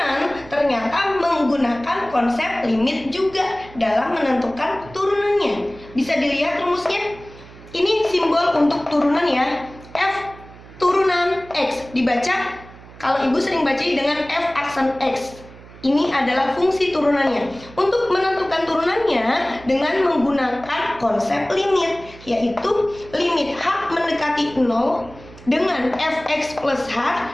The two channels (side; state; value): right; noise; hum, 20 dB below the sound